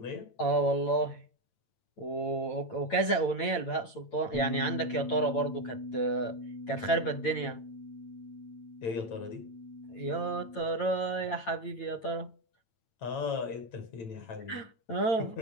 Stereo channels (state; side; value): late; right; 8.9 ms